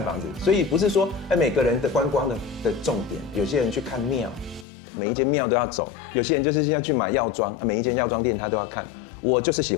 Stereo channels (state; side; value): drops out; right; at 4.7 s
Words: 房子，所以不是说每个人的观光的重点，有些人去看庙，每一间庙都要走；有些人就是要去买药妆，每一间药妆店他都要看。我就是喜